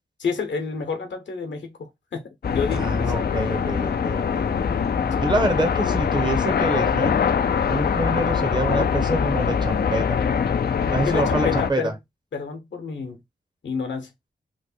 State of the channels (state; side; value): quieter; right; 4.0 dB